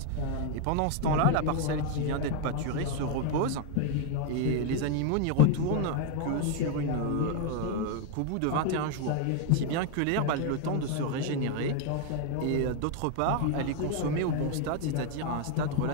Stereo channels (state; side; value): different; both; correlation 0.00